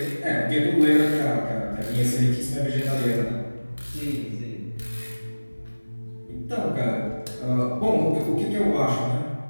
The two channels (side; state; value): both; inverted; correlation -1.00